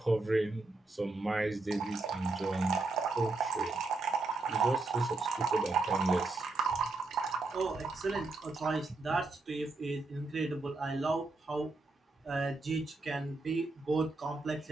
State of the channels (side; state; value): left; quieter; 3.4 dB